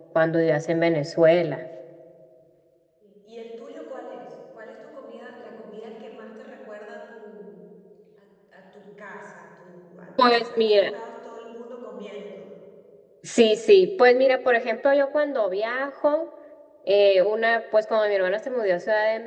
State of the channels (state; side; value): identical; both; correlation 1.00